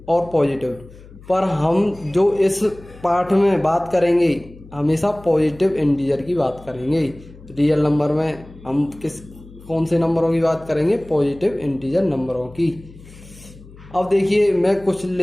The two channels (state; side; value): noise; left; hum, 20 dB below the sound